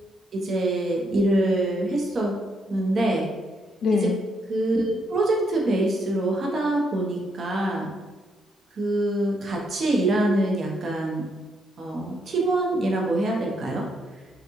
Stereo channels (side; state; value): both; normal; correlation 0.76